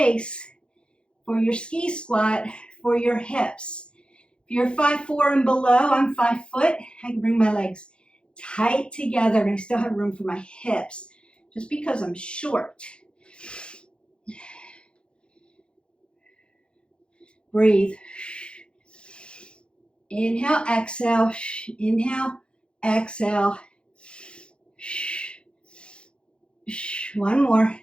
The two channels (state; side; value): late; right; 0.055 ms